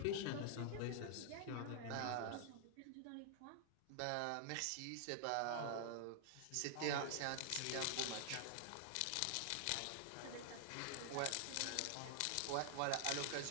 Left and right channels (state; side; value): different; both; correlation 0.00